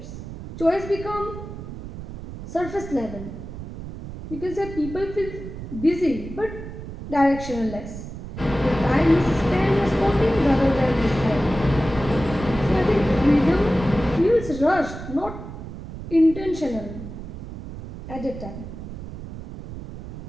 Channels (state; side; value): noise; right; rumble, 11 dB below the sound